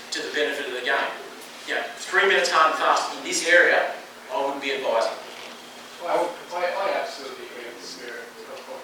to the benefit of the game. You know, 3 minutes hard and fast in this area, I wouldn't be advising. Well, I absolutely agree with the spirit of what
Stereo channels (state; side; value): identical; both; correlation 1.00